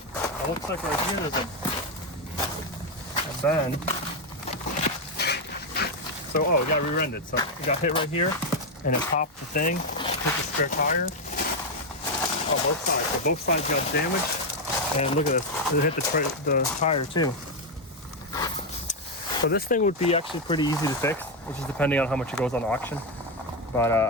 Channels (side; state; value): both; normal; correlation 0.05